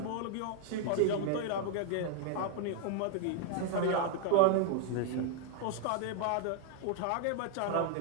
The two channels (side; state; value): both; different; correlation 0.00